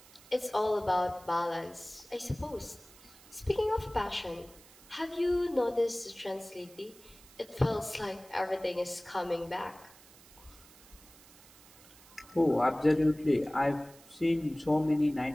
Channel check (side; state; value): right; noise; hiss, 23 dB below the sound